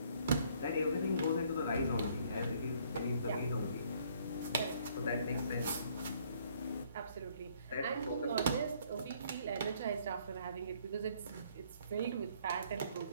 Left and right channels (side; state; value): both; inverted; correlation -0.63